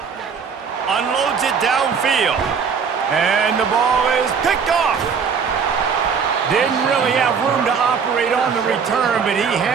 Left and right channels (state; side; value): quieter; left; 6.2 dB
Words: Unloads it downfield. And the ball is picked off. Didn't really have room to operate on the return, but he